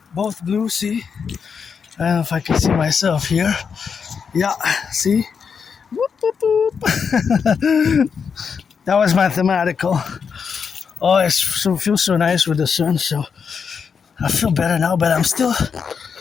both blue, see? I don't know if I can see myself here. Yeah, see? Whoop, whoop, whoop. That was mathematical. Oh, it feels so nice with the sun, so I feel better now, but I still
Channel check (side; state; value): right; quieter; 6.3 dB